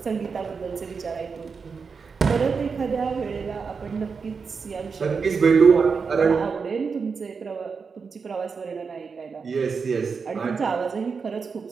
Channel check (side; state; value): left; quieter; 5.4 dB